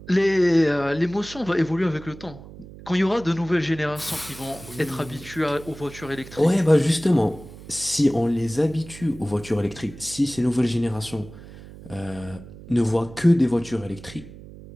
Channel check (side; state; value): right; noise; hum, 17 dB below the sound